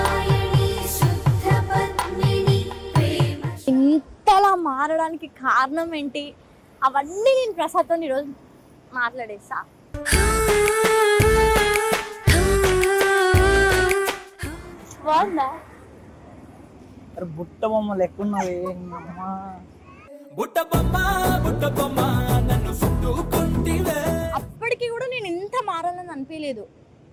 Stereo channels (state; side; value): identical; both; correlation 1.00